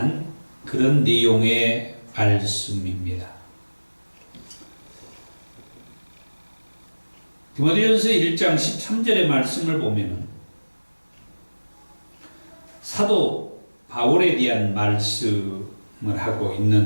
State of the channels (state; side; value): inverted; both; correlation -1.00